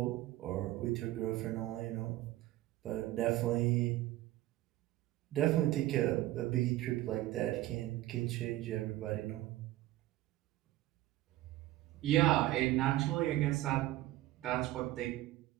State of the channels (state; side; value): quieter; left; 16.0 dB